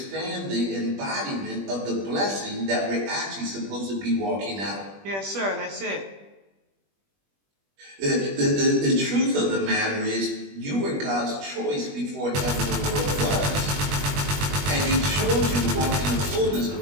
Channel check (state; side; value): late; left; 21 ms